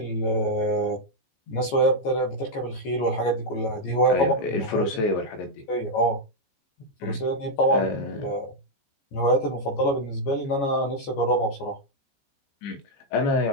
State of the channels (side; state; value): right; late; 14 ms